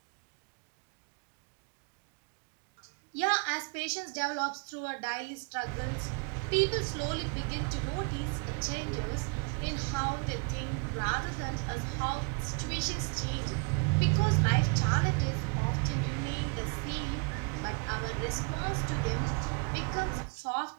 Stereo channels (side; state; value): left; quieter; 36.4 dB